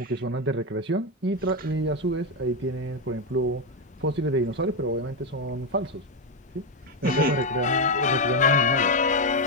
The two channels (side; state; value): both; normal; correlation 0.06